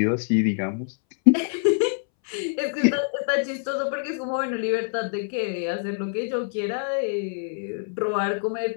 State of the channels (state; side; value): silent; right; 62 dB below the other